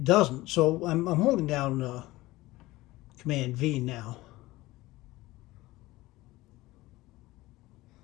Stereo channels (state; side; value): quieter; right; 18.8 dB